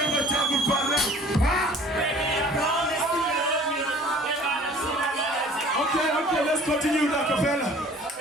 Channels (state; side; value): normal; both; correlation 0.50